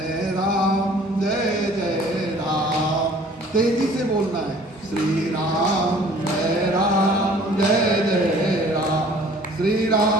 राम जय जय राम। तेजी से बोलना है। श्री राम जय राम जय जय राम। श्री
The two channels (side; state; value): both; normal; correlation 0.52